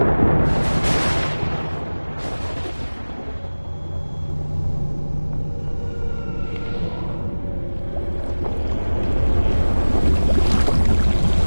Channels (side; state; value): both; inverted; correlation -1.00